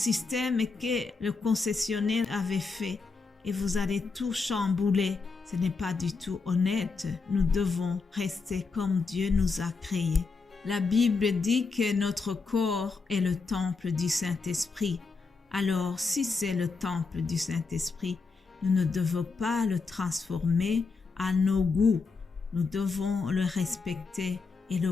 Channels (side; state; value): right; quieter; 4.4 dB